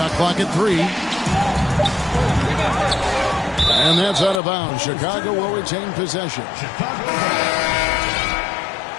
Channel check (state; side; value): drops out; right; at 4.4 s